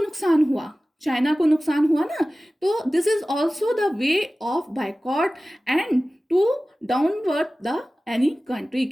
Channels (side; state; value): both; normal; correlation 0.96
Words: नुकसान हुआ? चाइना को नुकसान हुआ ना। तो this is also the way of boycott and to downward the any country.